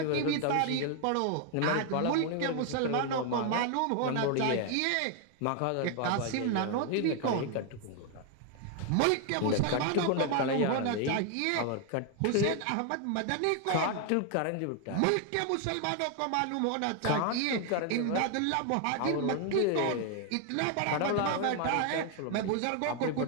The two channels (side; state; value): both; different; correlation 0.01